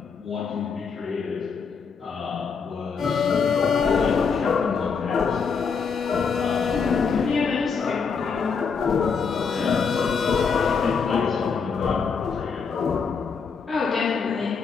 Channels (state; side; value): quieter; right; 5.7 dB